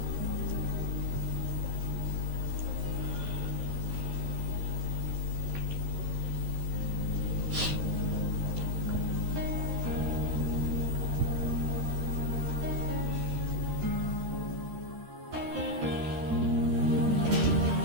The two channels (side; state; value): left; late; 13 ms